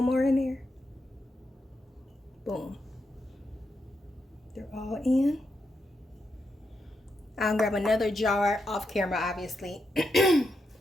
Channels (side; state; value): both; normal; correlation 0.83